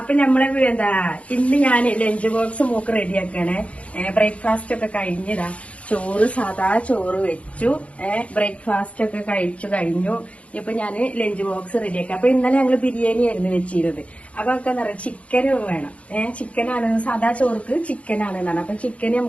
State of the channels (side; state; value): right; late; 0.064 ms